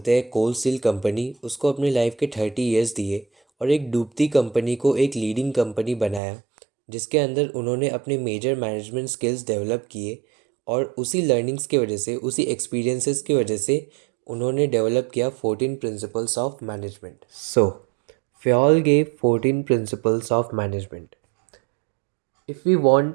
हैं कोल steel company उसको अपनी लाइफ के 30 इयर्स दिए और एक डूबती कंपनी को एक लीडिंग कंपनी बनाया जिसके अंदर उन्होंने अपने मेजर मैनेजमेंट स्किल्स डेवलप किए और उसी लर्निंग्स की वजह से उसी एक्सपीरियंसेस की वजह से उन्होंने डेवलप किया 14 principles of management. So Fayol gave 14 principles of management. If we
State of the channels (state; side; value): drops out; left; at 6.2 s